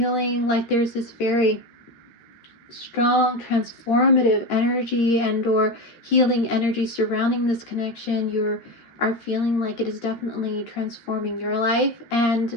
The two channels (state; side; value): late; right; 13 ms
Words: like there's this very strong transformative energy and or healing energy surrounding this connection. You are feeling like it is definitely transforming your life.